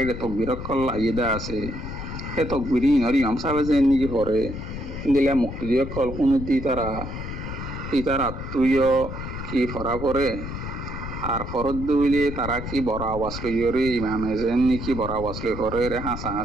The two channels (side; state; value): left; noise; rumble, 7 dB below the sound